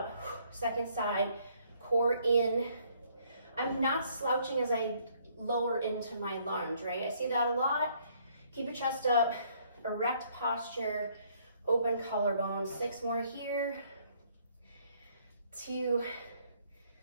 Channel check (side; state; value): both; inverted; correlation -0.65